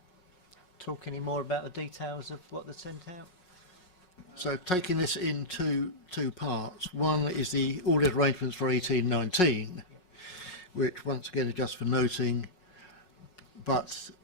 talk any more about the details of what they sent out? So taking this in two parts. One is the audit arrangements for 1819, which once again are just for noting, but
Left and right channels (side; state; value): right; late; 5.5 ms